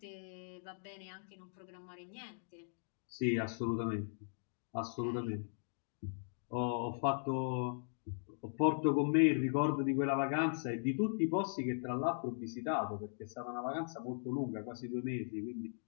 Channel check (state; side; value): silent; right; digital silence